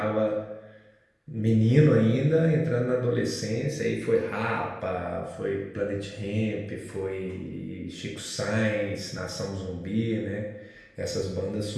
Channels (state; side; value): identical; both; correlation 1.00